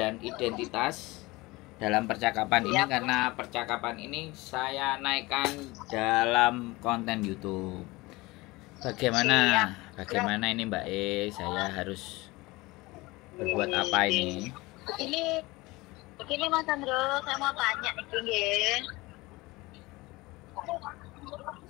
identitas dalam percakapan ini Siap. karena percakapan ini saya naikkan dalam konten YouTube. Bagaimana ini Mbak Saya harus berbuat apa ini? Begini Mas Andro, saya mau tanya nih, nggih.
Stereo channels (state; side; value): quieter; right; 21.8 dB